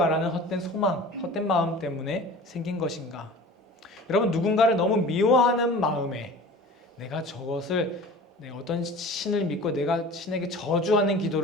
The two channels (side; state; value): both; normal; correlation 0.41